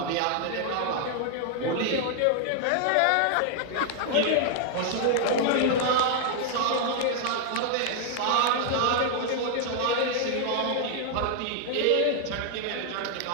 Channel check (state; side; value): different; both; correlation 0.00